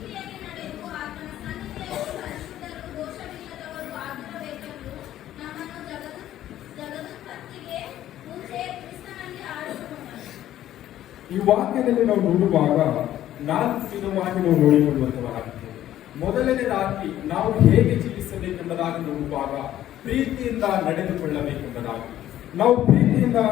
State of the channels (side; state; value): right; quieter; 12.6 dB